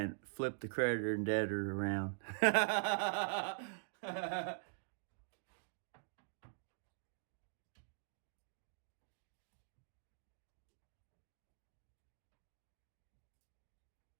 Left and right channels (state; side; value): silent; left; digital silence